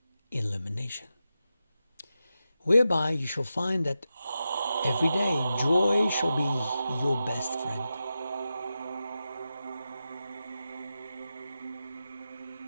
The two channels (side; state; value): both; inverted; correlation -0.90